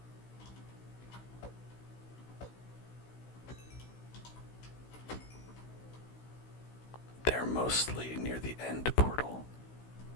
They're mostly near the end portal.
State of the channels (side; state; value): right; late; 16 ms